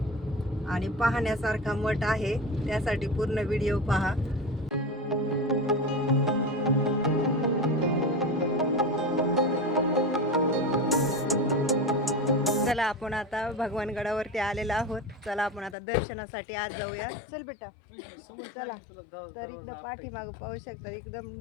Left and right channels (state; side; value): drops out; right; at 15.8 s